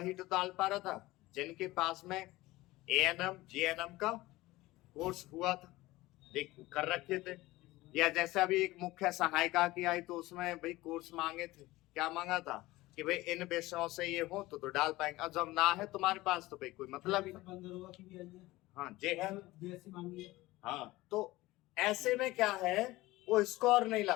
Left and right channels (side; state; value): right; quieter; 18.8 dB